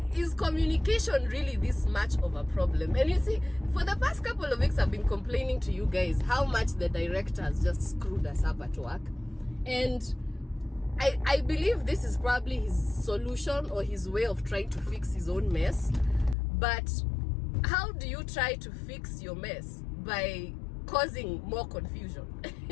is communication really this much of a problem? And you see, for the past couple of weeks, I've been complaining to you guys how much the director has just screwed us up at work. And I believe this is probably his solution or his way of trying to fix his own mess. But how do you try to fix your mess? By causing more confusion.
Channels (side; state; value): right; drops out; at 16.4 s